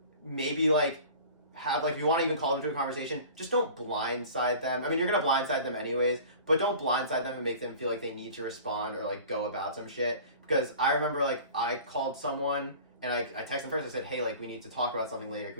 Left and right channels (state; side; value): inverted; both; correlation -0.42